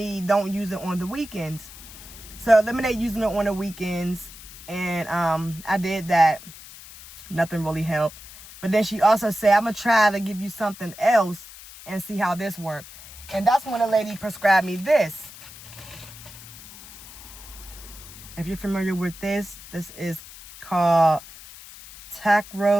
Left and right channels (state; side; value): noise; left; hiss, 17 dB below the sound